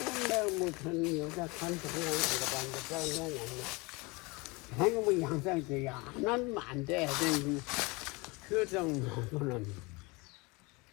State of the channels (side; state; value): right; quieter; 26.1 dB